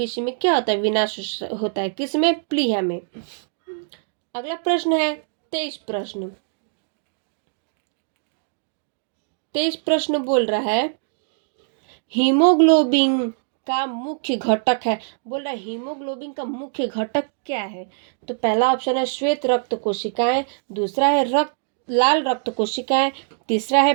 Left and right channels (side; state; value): left; silent; digital silence